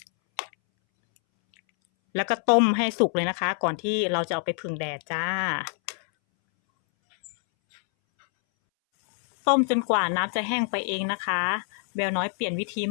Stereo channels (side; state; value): right; silent; 61 dB below the other